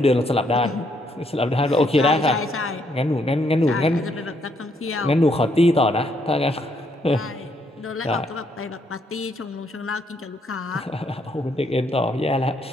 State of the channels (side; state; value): both; normal; correlation 0.73